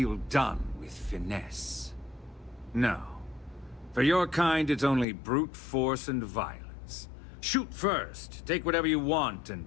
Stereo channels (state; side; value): drops out; right; at 5.1 s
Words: done with finesse. No. For your kind, it's only brute force and violence. Shoot first, take whatever you want, and